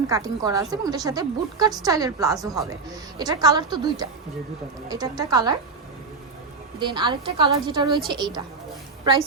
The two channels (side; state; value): left; quieter; 4.4 dB